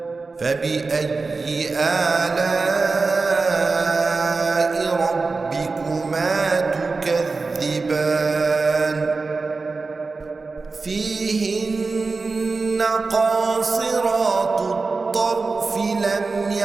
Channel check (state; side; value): quieter; left; 4.0 dB